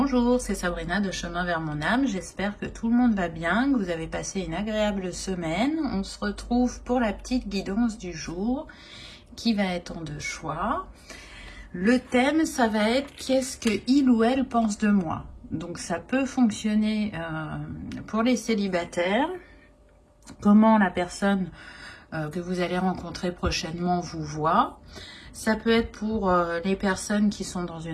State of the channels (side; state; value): both; identical; correlation 1.00